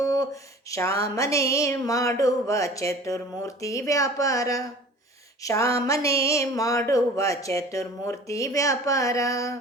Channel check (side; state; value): both; normal; correlation 0.44